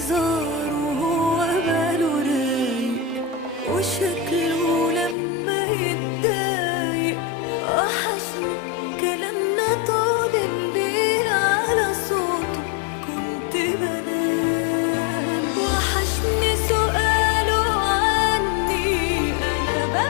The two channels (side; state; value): right; drops out; at 5.2 s